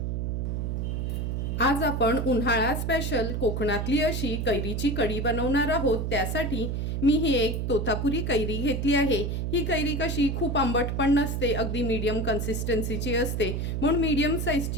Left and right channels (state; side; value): noise; right; hum, 1 dB below the sound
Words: आज आपण उन्हाळा स्पेशल कोकणातली अशी कैरीची कढी बनवणार आहोत. त्यासाठी मी ही एक तोतापुरी कैरी घेतली आहे. ही कैरी कशी खूप आंबट पण नसते, अगदी मीडियम कन्सिस्टन्सीची असते, म्हणून मीडियम